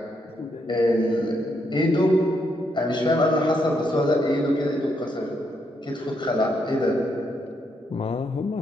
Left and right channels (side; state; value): both; normal; correlation 0.77